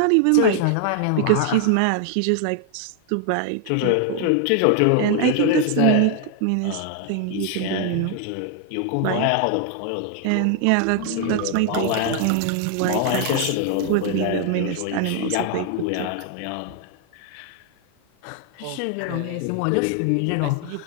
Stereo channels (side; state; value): both; different; correlation 0.00